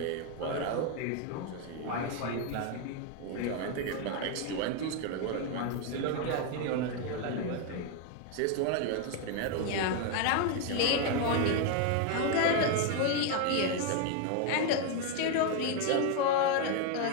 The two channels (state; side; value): different; both; correlation 0.01